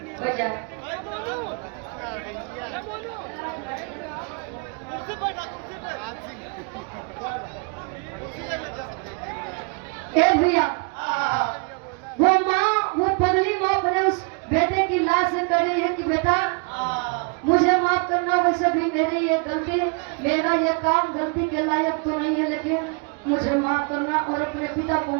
बैठ जा कुर्सी पर ए भैया वो माँ वो पगली माँ अपने उस बेटे की लाश से कह रही है कि बेटा मुझे माफ करना वैसे भी मेरी ये गलती मेरा ये काम गलती के लायक तो नहीं है लेकिन मुझे माफ करना और अपने पिता को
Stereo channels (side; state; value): left; quieter; 34.8 dB